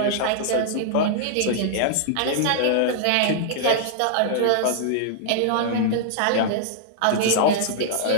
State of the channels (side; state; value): both; different; correlation -0.01